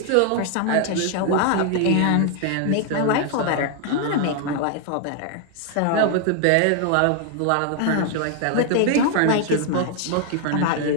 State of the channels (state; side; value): different; both; correlation 0.00